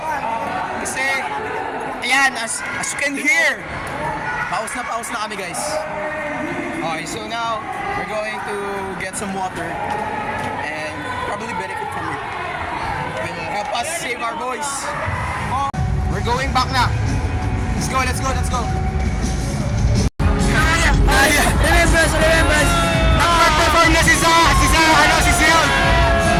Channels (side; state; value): both; identical; correlation 1.00